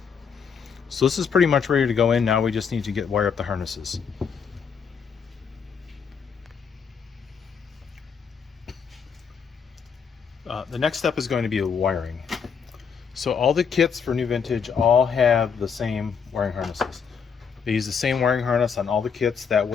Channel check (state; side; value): quieter; right; 6.5 dB